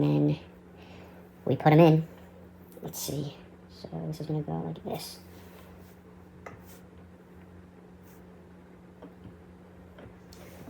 then we put them in. Let's see. So this is going to go like this.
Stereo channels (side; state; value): both; identical; correlation 1.00